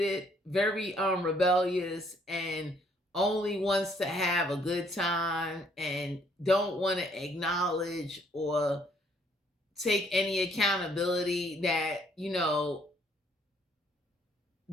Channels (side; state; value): both; normal; correlation 0.66